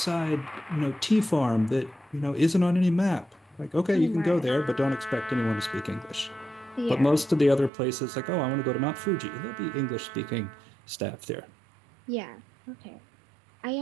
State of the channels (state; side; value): drops out; left; at 7.7 s